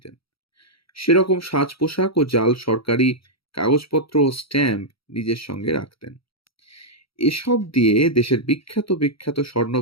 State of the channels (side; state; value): right; late; 0.75 ms